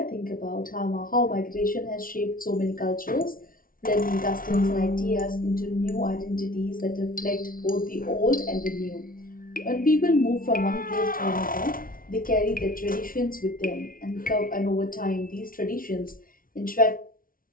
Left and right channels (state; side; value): late; right; 0.41 ms